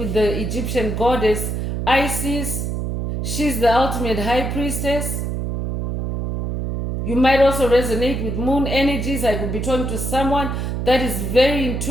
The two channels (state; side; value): noise; right; hum, 2 dB below the sound